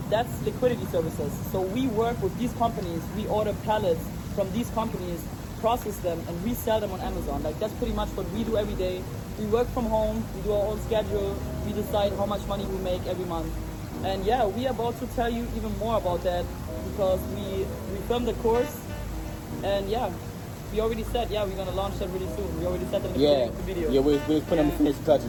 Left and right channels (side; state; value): both; identical; correlation 1.00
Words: That's liquidity services. So we work with these companies. We order pallets from these companies, process them, and resell them on Amazon. Like, that's pretty much what we do every day. We work from home. We do our own schedule. We decide how much money we make every month. And yeah, we are about to tell you even more about that, because we filmed the course, and yeah. We already said, we're going to launch that really soon. We already said that in the video. Yeah, we're putting on the finishing